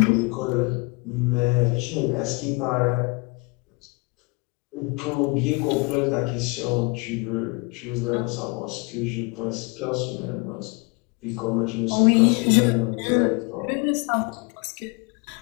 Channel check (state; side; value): quieter; right; 28.6 dB